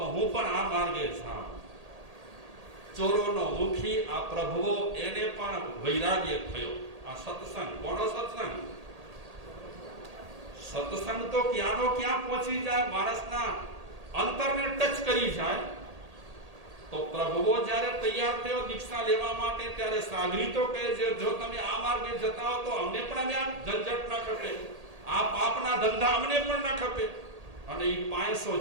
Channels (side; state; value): left; late; 1.8 ms